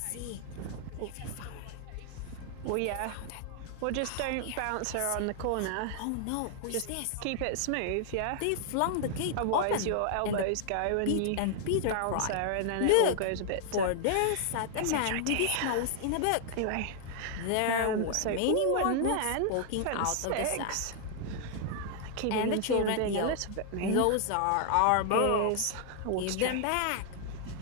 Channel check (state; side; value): different; both; correlation 0.00